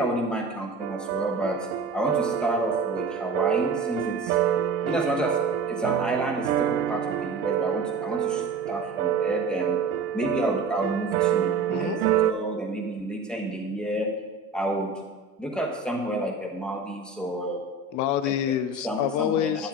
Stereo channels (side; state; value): left; quieter; 3.5 dB